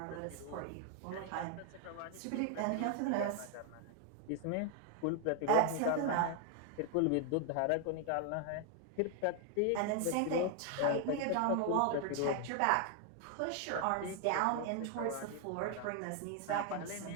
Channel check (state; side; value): different; both; correlation 0.00